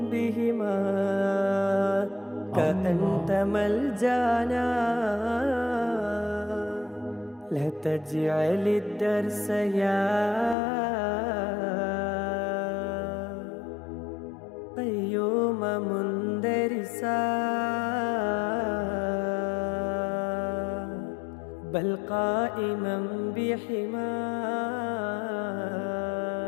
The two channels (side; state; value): right; drops out; at 10.6 s